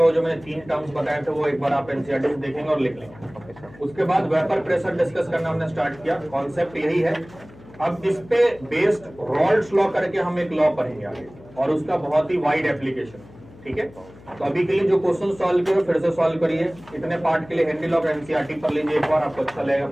वो जो मैंने 3 टर्म्स बताए थे वो एक बार आप एनसीईआरटी से देखेंगे और लिख लेंगे। उसके बाद वेपर प्रेशर डिस्कस करना हमने स्टार्ट किया, कॉन्सेप्ट यही है। अब इस पे बेस्ड रॉल्ड्स लॉ करके हम एक लॉ पढ़ेंगे आगे, और उसका बहुत ही वाइड एप्लीकेशन, ठीक है। तो अभी के लिए जो क्वेश्चन सॉल्व किए फिर से सॉल्व करिए। इतने पार्ट के लिए हेनरी लॉ और एनसीईआरटी पढ़ लीजिए एक बार, आपको अच्छा लगेगा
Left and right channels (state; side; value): noise; left; hum, 22 dB below the sound